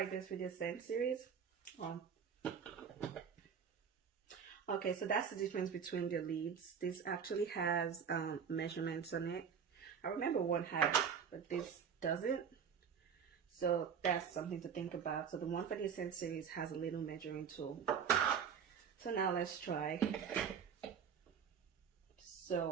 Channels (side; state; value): left; quieter; 7.2 dB